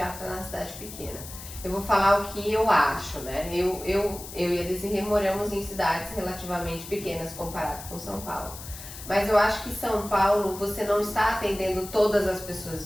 na cidade pequena. Eu vou falar o que eu acho, né? Eu e a Desirê moramos em cidades relativamente pequenas comparado com São Paulo. Mas eu acho que São Paulo, você não está atendendo todas as pessoas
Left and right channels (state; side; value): noise; left; hiss, 13 dB below the sound